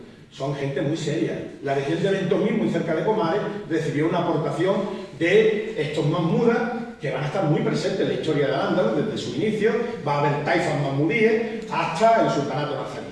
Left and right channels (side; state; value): both; identical; correlation 1.00